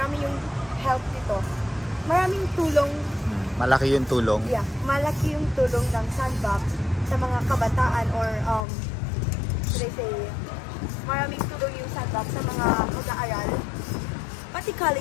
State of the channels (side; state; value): right; drops out; at 8.7 s